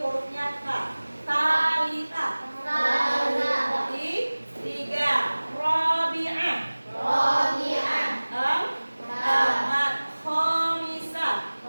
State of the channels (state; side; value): inverted; both; correlation -1.00